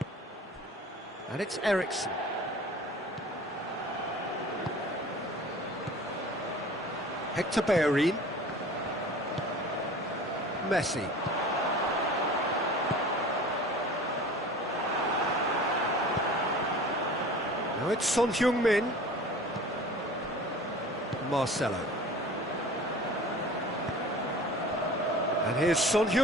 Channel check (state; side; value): normal; both; correlation 0.42